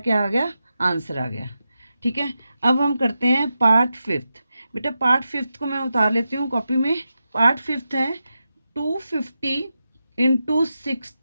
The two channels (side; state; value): both; inverted; correlation -0.89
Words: आ गया, आंसर आ गया, ठीक है। अब हम करते हैं पार्ट 5। बेटा पार्ट 5 को मैं उतार लेती हूँ कॉपी में। पार्ट 5 है 250 इंटू